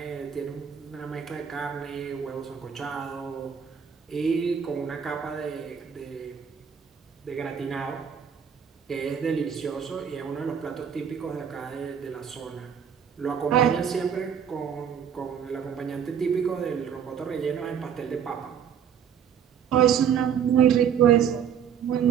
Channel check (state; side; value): quieter; left; 8.0 dB